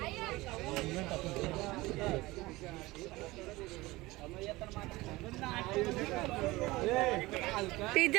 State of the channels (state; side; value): quieter; left; 20.3 dB